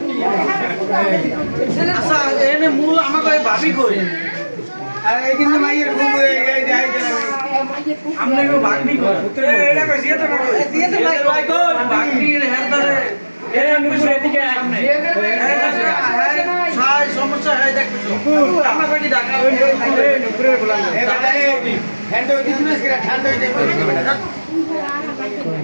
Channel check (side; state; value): both; inverted; correlation -1.00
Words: আচ্ছা এনে মূল আমাকে ভাবি কই अरे कितने माइयर घूम गए जाए আমরা কেউ ভাগনি কই এটা কই দিয়ে তো ভাই কই ভাগনি হেরদারে এটা মুখে এদিকে সামনে সাই সমস্যা হয় দেখছো আমরা কই ঢাকা নুপুরে বলা হ্যান্ড ওই দিন না সেটা ঠান্ডা হয়ে যাবে